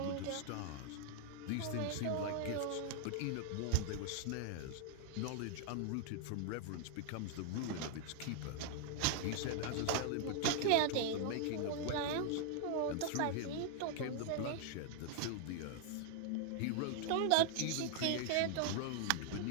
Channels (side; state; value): both; different; correlation 0.00